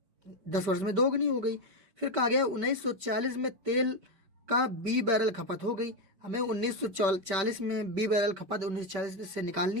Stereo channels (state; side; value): late; left; 5.2 ms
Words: 10 वर्ष में दोगुनी हो गई। फिर कहा गया 1940 में तेल का बी बैरल खपत हो गई। हमें 1940 में बी बैरल खपत 1940 से